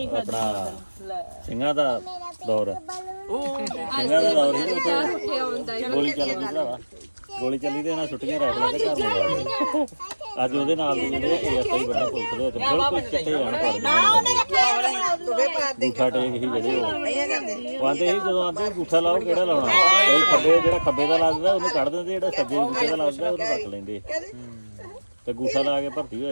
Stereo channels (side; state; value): both; inverted; correlation -1.00